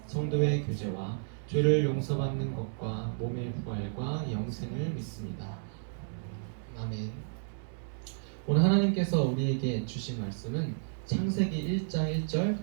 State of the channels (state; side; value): silent; left; digital silence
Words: 성도의 교제와 죄를 용서받는 것과 몸의 부활과 영생을 믿습니다. 아멘. 오늘 하나님께서 우리에게 주신 말씀은 창세기 1장 1절